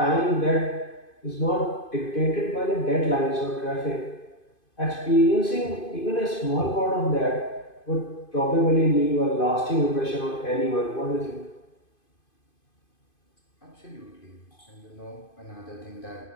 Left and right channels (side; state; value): right; late; 2.5 ms